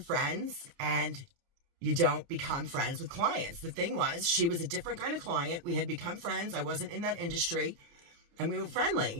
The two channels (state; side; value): late; left; 29 ms